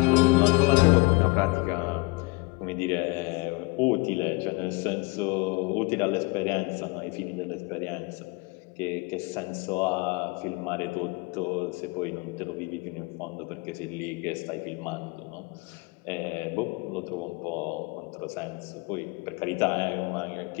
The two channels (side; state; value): right; quieter; 24.9 dB